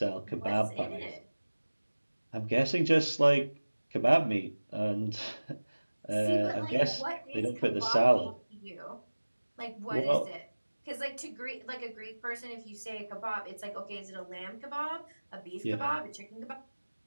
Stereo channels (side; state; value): both; inverted; correlation -1.00